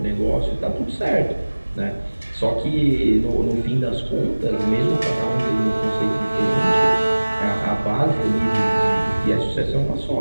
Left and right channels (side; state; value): both; inverted; correlation -1.00